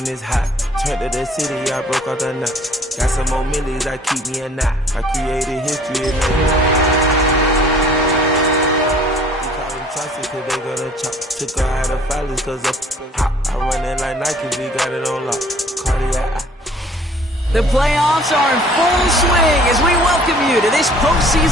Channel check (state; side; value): normal; both; correlation 0.54